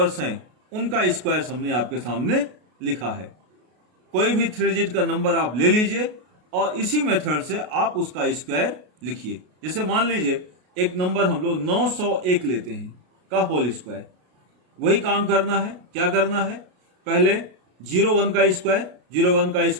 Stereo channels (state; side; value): late; left; 33 ms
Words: हैं उनका स्क्वायर हमने आपके सामने लिखा है। कोई भी 3 डिजिट का नंबर आप ले लीजिए और इसी मेथड से आप उसका स्क्वायर लिखिए। जैसे मान लीजिए एक नंबर हम लोग 901 लेते हैं का होल स्क्वायर, वही काम करना है। क्या करना है, पहले 01 का स्क्वायर, 01 का